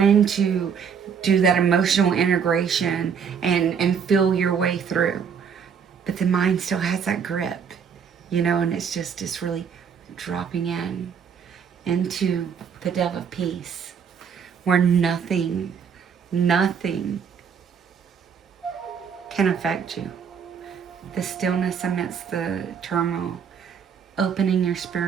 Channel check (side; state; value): left; quieter; 7.0 dB